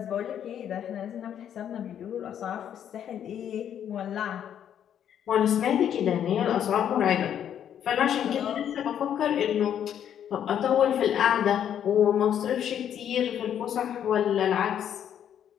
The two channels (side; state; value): right; quieter; 9.5 dB